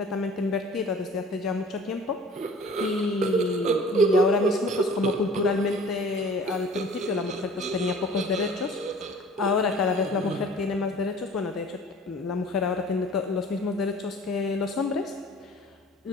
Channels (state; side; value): normal; both; correlation 0.47